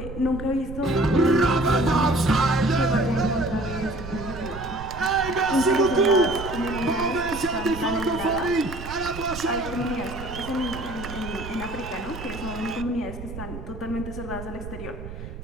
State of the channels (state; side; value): noise; right; rumble, 11 dB below the sound